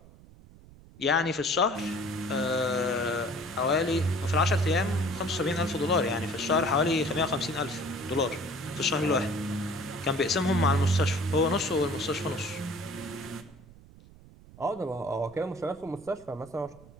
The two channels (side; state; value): right; noise; rumble, 22 dB below the sound